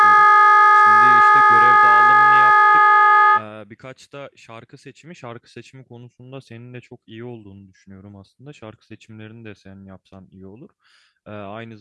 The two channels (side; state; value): both; identical; correlation 1.00